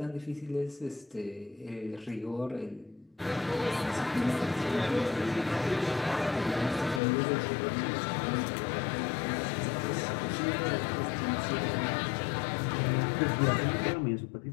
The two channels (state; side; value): drops out; right; at 7.0 s